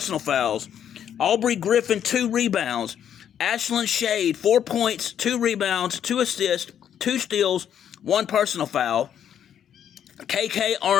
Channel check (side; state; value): right; quieter; 9.3 dB